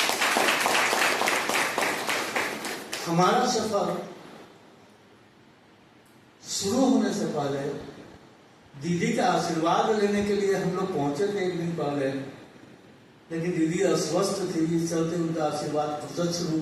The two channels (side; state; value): both; identical; correlation 1.00